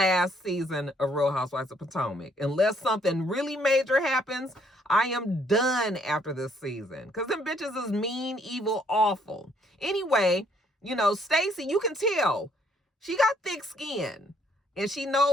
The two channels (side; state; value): both; normal; correlation 0.67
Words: season of Real Housewives of Potomac. Unless something really major happens, I am done after this season. Because them bitches is mean, evil, awful. Anyway, you know, Stacey, you can tell she got thick skin. And she